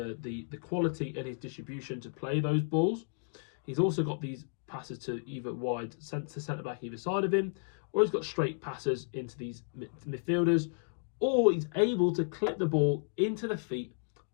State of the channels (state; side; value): silent; right; digital silence